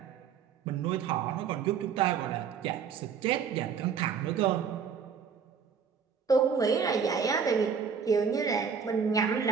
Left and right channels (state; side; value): quieter; left; 6.6 dB